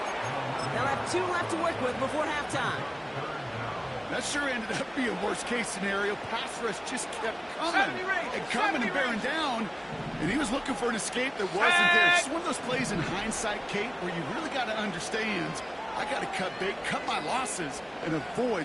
They'll have 2 left to work with before halftime. That sure ended up being worst-case scenario. Pass rush just kept coming and coming and bearing down, and he was looking for an escape that wasn't there. It's one of those plays in hindsight, Kate, where you really got to understand, I got to cut bait, cut my losses, and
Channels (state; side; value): identical; both; correlation 1.00